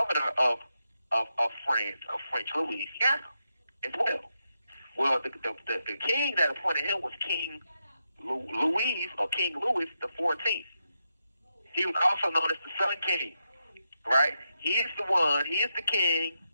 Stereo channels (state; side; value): inverted; both; correlation -0.85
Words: of France, of French Louisiana as well. Well, the king that appointed him was King Louis the 14th. He was also known as the Sun King, right? He is the king